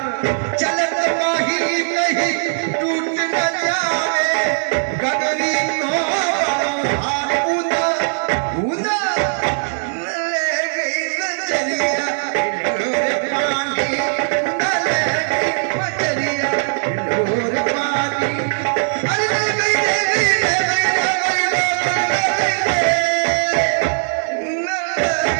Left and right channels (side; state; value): left; silent; 63 dB below the other